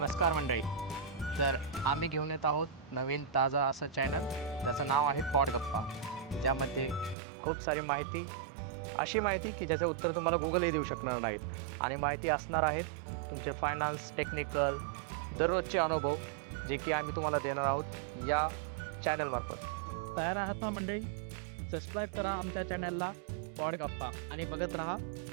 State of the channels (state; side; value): drops out; left; at 7.2 s